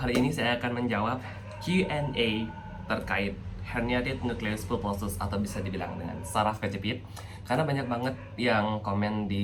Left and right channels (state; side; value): identical; both; correlation 1.00